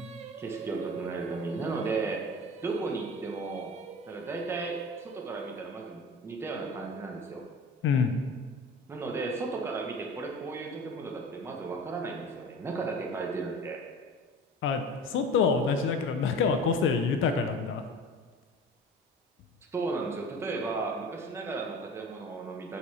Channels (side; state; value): both; normal; correlation 0.38